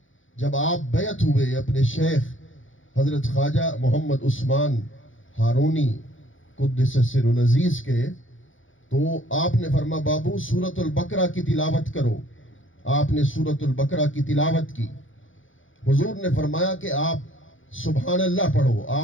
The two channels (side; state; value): right; late; 0.57 ms